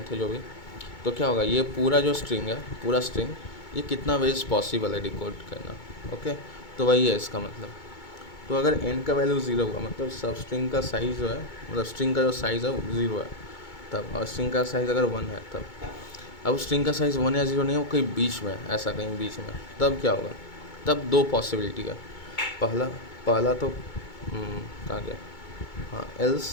है जो भी, तो क्या होगा ये पूरा जो स्ट्रिंग है, पूरा स्ट्रिंग ये कितना वेज पॉसिबल है डिकोड करना, ओके। तो वही है इसका मतलब। तो अगर n का वैल्यू 0 हुआ मतलब सब स्ट्रिंग का साइज़ जो है, मतलब स्ट्रिंग का जो साइज़ है वो 0 है तब, और स्ट्रिंग का साइज़ अगर 1 है तब। अब स्ट्रिंग का साइज़ 1 या 0 नहीं है, वो कहीं बीच में, ऐसा कहीं बीच में, तब क्या होगा, तब दो पॉसिबिलिटी है। पहला तो कहाँ गया, हाँ एल्स,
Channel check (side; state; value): right; late; 2.2 ms